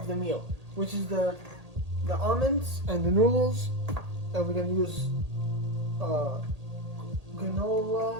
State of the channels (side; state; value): left; late; 1.8 ms